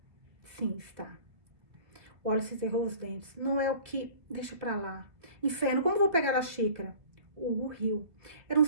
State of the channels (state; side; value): late; left; 2.0 ms